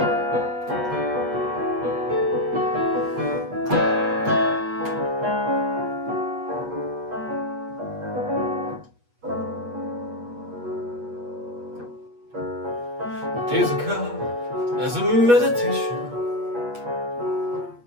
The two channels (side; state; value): left; late; 8.3 ms